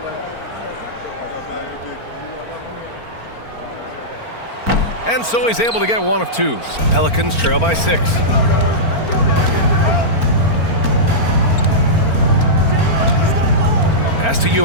And so he's able to get 1 of 2. Pelicans trail by 6. Pass to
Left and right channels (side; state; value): right; late; 4.4 ms